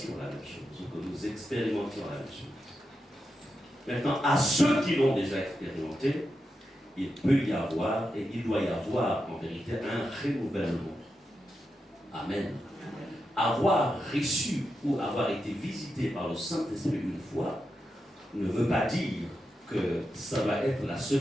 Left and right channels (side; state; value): both; normal; correlation 0.87